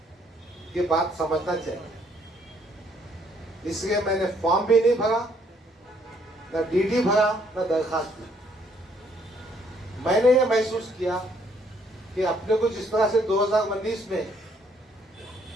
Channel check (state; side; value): normal; both; correlation 0.67